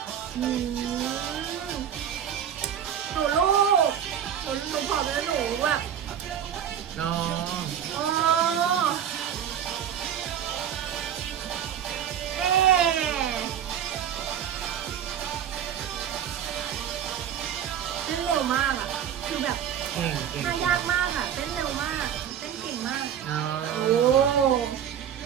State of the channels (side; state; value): left; quieter; 9.3 dB